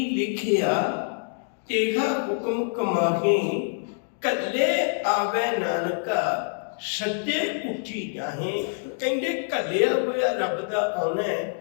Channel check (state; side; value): silent; right; digital silence